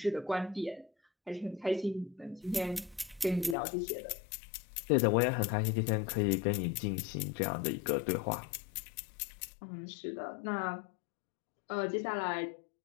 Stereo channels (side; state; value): right; drops out; at 3.6 s